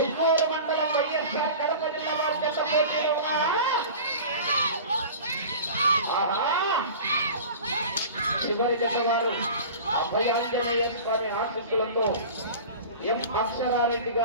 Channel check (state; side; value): inverted; both; correlation -0.37